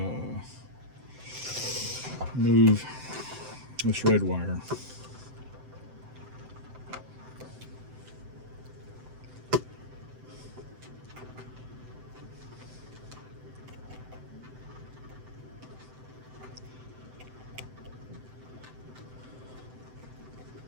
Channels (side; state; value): left; late; 7.8 ms